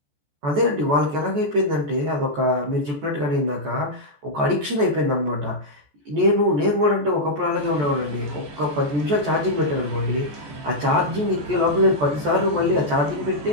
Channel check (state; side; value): late; left; 14 ms